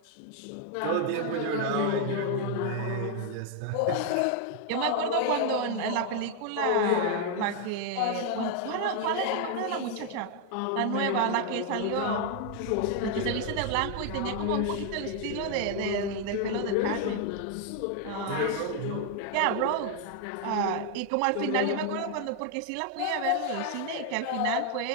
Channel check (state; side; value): different; both; correlation 0.00